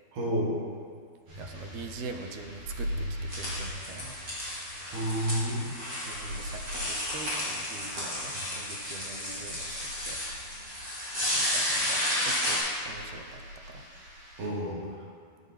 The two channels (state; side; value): late; left; 12 ms